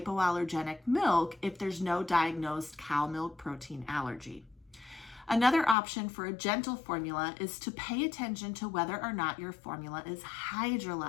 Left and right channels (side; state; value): right; drops out; at 5.8 s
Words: milk if there's no diagnosed cow milk protein allergy. Another option for a gentle formula is to pay attention to whether or not your formula is